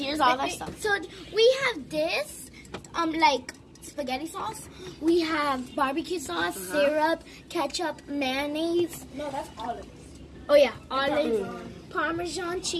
all our stuff. So we have this, like spaghetti sauce. We have barbecue sauce, syrup, ketchup, mayonnaise. No, that's olives. Oh yeah, olive, Parmesan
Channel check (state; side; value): identical; both; correlation 1.00